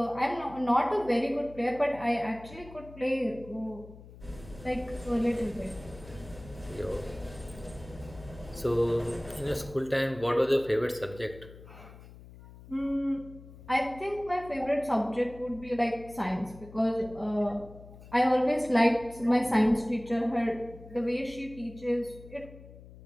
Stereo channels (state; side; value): noise; left; hum, 18 dB below the sound